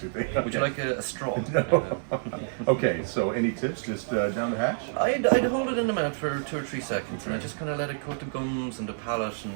Okay. Would you like a straw? No. Okay, so any tips just down the hatch? I'd hold it in the mouth for 2 or 3 seconds, and I just kind of let it coat the gums and the palate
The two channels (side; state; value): left; silent; 59 dB below the other